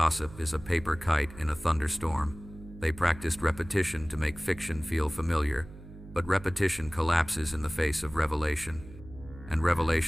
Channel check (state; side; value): noise; right; hum, 17 dB below the sound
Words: is a paper kite in a thunderstorm. They practiced repetition to make fiction feel familiar, but repetition collapses in the face of revelation. And